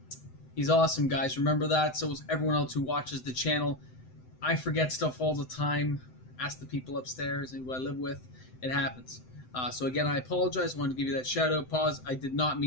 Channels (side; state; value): right; late; 7.8 ms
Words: he's awesome, guys. Remember that. So is everyone else who watches the channel. I forget stuff all the time. Ask the people upstairs and who I live with. It happens. So again, I apologize. I wanted to give you that shout out. Pause. I did not